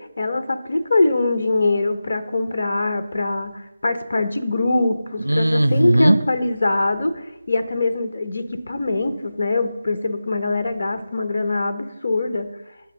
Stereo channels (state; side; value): inverted; both; correlation -0.93